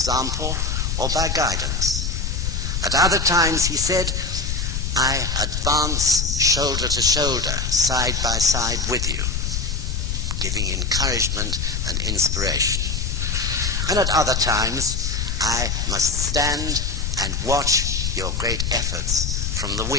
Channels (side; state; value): left; noise; rumble, 1 dB below the sound